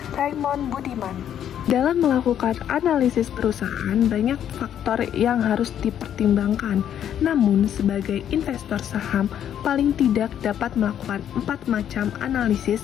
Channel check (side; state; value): right; quieter; 9.9 dB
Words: Raymond Budiman. Dalam melakukan analisis perusahaan, banyak faktor yang harus dipertimbangkan. Namun, sebagai investor saham, paling tidak dapat melakukan 4 macam analisis,